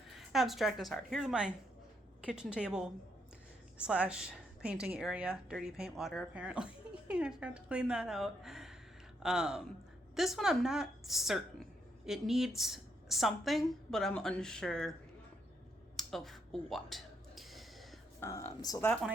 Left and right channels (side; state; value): both; normal; correlation 0.77